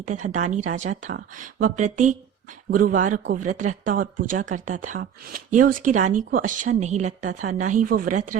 तथा दानी राजा था। वह प्रत्येक गुरुवार को व्रत रखता और पूजा करता था। यह उसकी रानी को अच्छा नहीं लगता था। न ही वो व्रत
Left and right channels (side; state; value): left; quieter; 8.7 dB